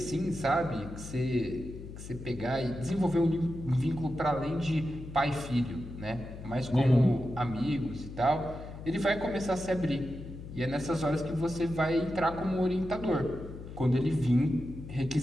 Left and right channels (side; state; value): left; noise; hum, 12 dB below the sound